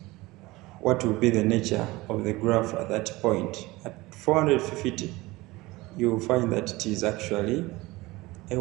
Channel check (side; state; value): left; quieter; 20.7 dB